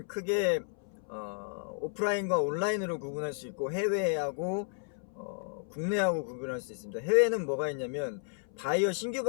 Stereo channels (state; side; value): silent; right; 56 dB below the other